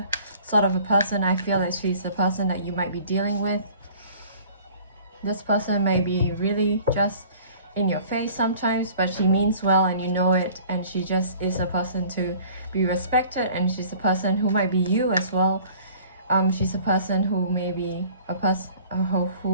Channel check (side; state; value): both; inverted; correlation -0.49